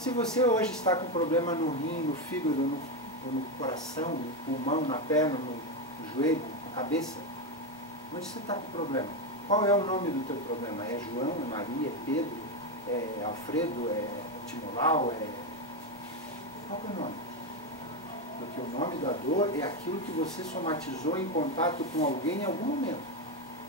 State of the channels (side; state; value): both; normal; correlation 0.09